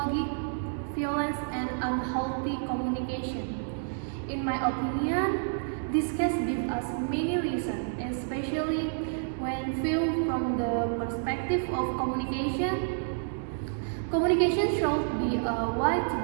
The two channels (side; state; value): left; silent; digital silence